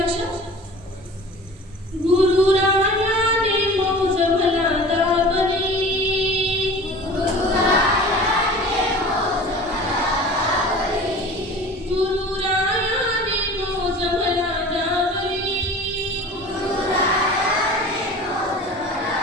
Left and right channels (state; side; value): normal; both; correlation 0.40